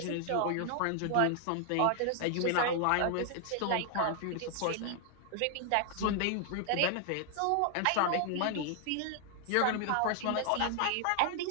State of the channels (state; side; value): different; both; correlation 0.00